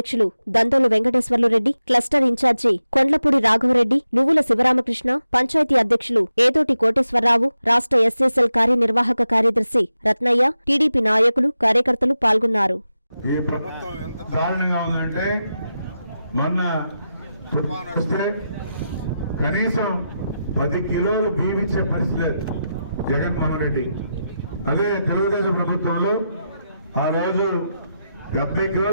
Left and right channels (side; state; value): both; inverted; correlation -0.89